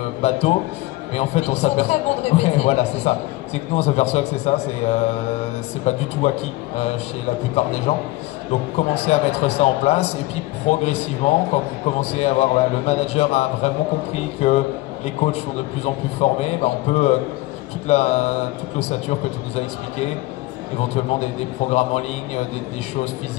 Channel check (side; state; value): right; quieter; 19.4 dB